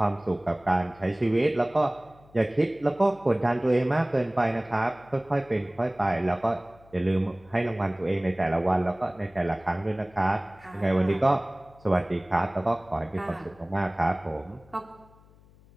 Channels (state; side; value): noise; left; hum, 27 dB below the sound